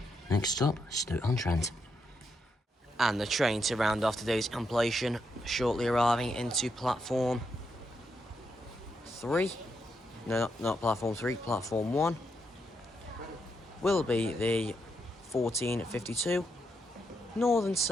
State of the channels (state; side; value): normal; both; correlation 0.81